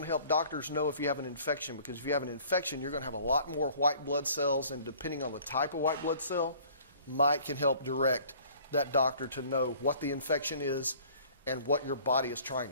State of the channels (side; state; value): both; inverted; correlation -0.53